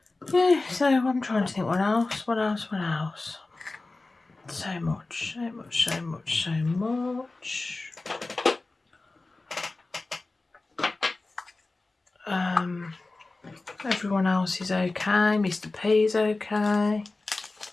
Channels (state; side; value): quieter; right; 3.3 dB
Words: Yeah, so I'm trying to think what else. So much. Everyone else is okay. Mr. P's okay.